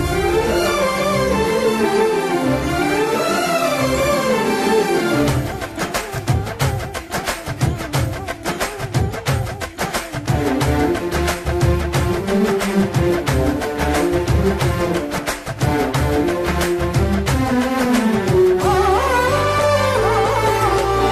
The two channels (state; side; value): identical; both; correlation 1.00